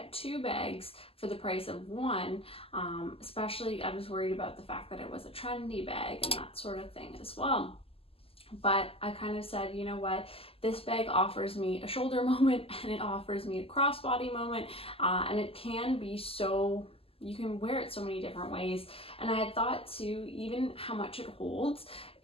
2 bags for the price of 1. Especially I was worried about the fact that it was a trendy bag and that sort of thing as well. But I kind of said, you know what, this bag offers me a shoulder moment, and it offers me a crossbody moment, and it can be so, you can wear it so many different ways. And I had thought too, even how much it holds,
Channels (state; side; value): late; right; 0.28 ms